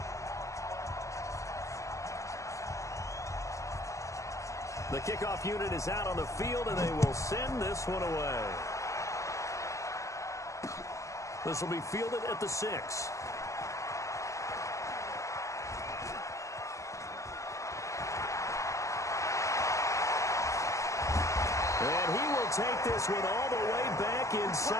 The kickoff unit is out on the field, and they will send this one away. This will be fielded at the 6. And he will take this one all the way back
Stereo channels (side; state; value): right; late; 0.15 ms